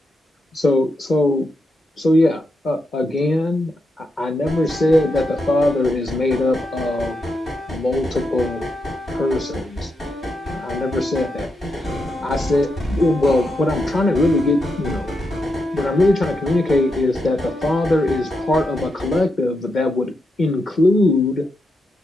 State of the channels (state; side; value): normal; both; correlation 0.84